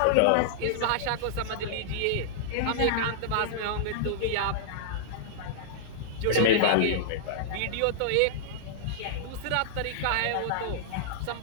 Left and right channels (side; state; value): both; different; correlation -0.02